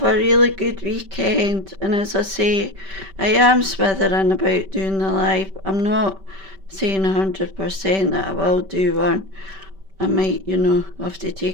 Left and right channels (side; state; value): left; late; 5.2 ms